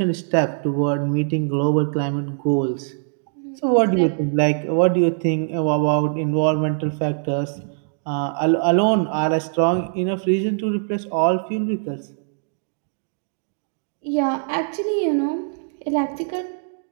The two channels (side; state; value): left; silent; digital silence